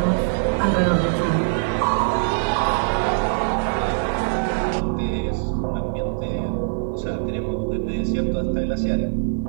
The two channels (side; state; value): left; silent; 59 dB below the other